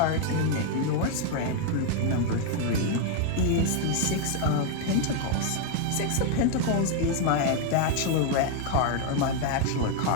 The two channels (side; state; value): both; different; correlation 0.01